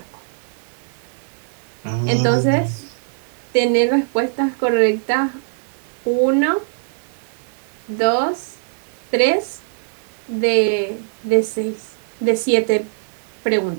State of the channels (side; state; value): left; silent; 61 dB below the other